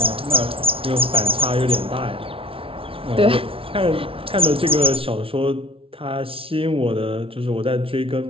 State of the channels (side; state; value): left; late; 0.26 ms